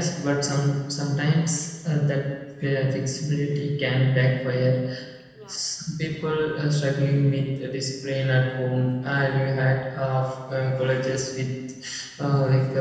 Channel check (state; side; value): identical; both; correlation 1.00